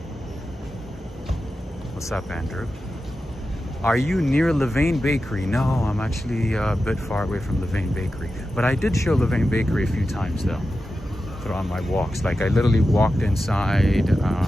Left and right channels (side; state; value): both; normal; correlation 0.92